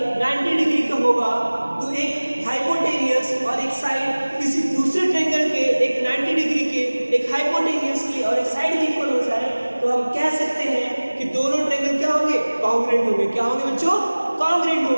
90 डिग्री का होगा, तो एक हाइपोटेनियस और एक साइड किसी दूसरे ट्रायंगल के एक 90 डिग्री के, एक हाइपोटेनियस की और एक साइड की इक्वल हो जाए, तो हम कह सकते हैं कि दोनों ट्रायंगल क्या होंगे, कॉन्ग्रुएंट होंगे। क्या होंगे बच्चों, कॉन्ग्रुएंट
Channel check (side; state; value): both; inverted; correlation -1.00